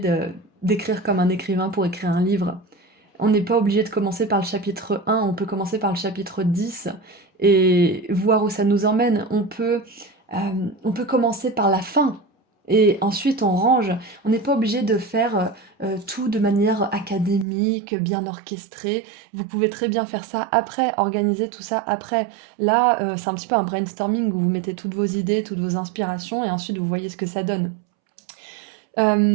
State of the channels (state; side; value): drops out; left; at 17.4 s